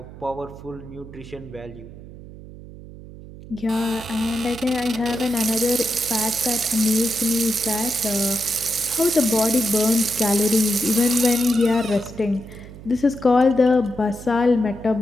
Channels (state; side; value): noise; right; hum, 16 dB below the sound